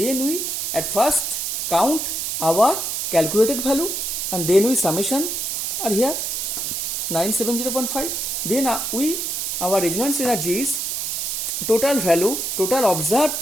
we at first count our calculated value, and then we summation are here 970.5. Then our resonance energy is total value, total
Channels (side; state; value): right; noise; hiss, 2 dB below the sound